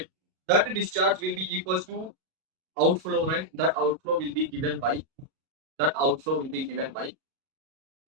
That discharge will be equals to outflow, right? That outflow will be given by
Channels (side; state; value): left; late; 38 ms